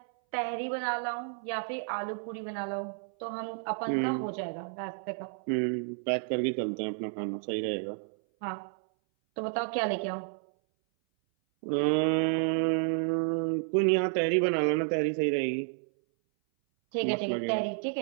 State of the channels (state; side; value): silent; left; 57 dB below the other